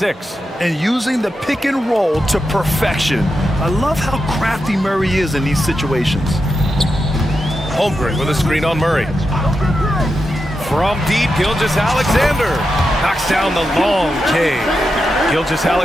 And using the pick and roll to perfection. I love how crafty Murray is in these situations. Holmgren with a screen on Murray. From deep, Gilgeous-Alexander knocks down the long K.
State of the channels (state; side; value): normal; both; correlation 0.88